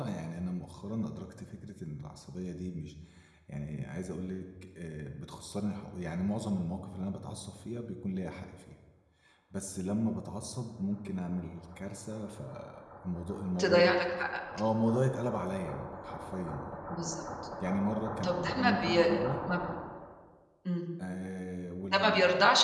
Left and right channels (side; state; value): both; identical; correlation 1.00